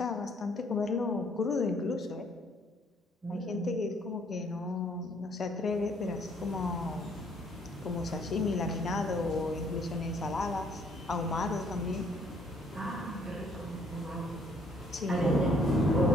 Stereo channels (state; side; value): normal; both; correlation 0.63